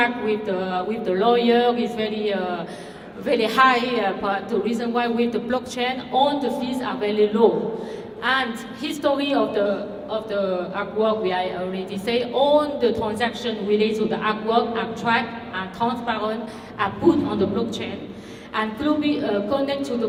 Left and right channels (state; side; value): identical; both; correlation 1.00